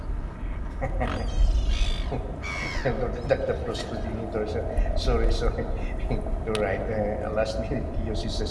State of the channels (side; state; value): both; identical; correlation 1.00